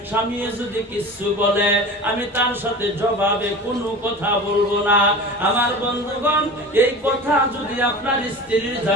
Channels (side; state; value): both; normal; correlation 0.34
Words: স্বামী যদি কিছু বলে আমি তার সাথে জবাবে কোনো কথা বলবো না। আমার বন্ধুগণ, এই কথা যদি আপনার স্ত্রীর